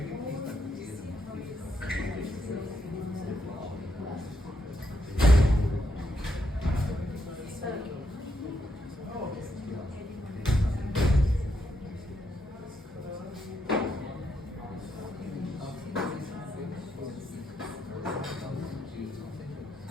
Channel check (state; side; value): normal; both; correlation 0.79